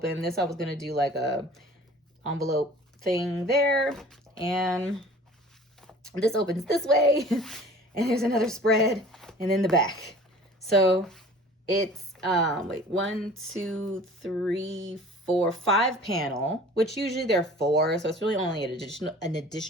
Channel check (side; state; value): both; normal; correlation 0.46